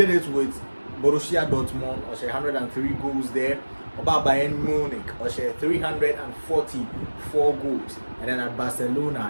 it with Borussia Dortmund, or 103 goals there. About Bayern Munich, or 344 goals, and then at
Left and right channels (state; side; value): inverted; both; correlation -1.00